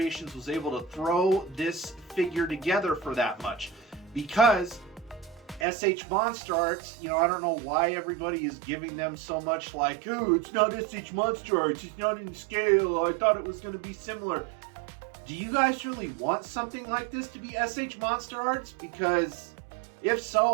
was able to throw this figure together for that much. Because SH Monster Arts, I don't know why everybody is giving them so much like, oh, it's not SH Monster Arts, it's not in scale, I thought it was going to be similar. Do you guys really want something like this to be SH Monster Arts? Because if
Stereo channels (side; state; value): left; drops out; at 5.7 s